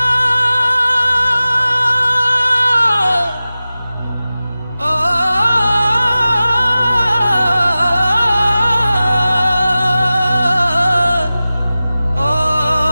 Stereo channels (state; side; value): inverted; both; correlation -0.96